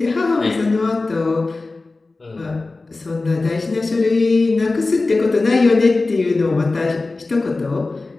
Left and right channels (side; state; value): right; quieter; 3.4 dB